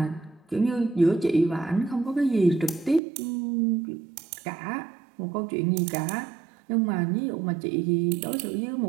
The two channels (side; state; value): left; drops out; at 3.0 s